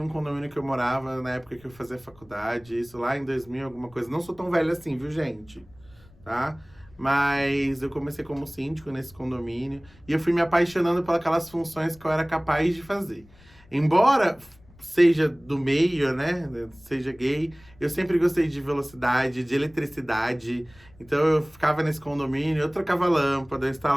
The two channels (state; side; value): noise; left; rumble, 26 dB below the sound